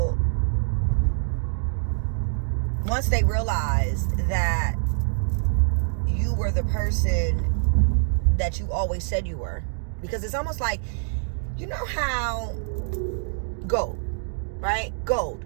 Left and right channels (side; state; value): left; silent; digital silence